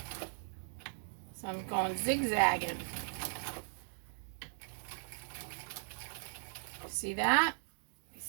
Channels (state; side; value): silent; left; digital silence